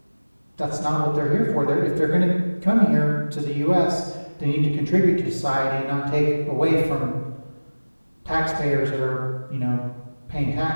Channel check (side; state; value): both; inverted; correlation -1.00